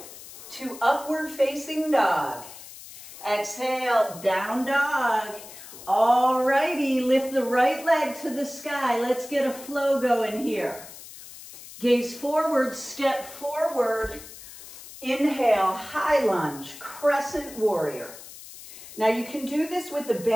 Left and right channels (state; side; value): noise; left; hiss, 16 dB below the sound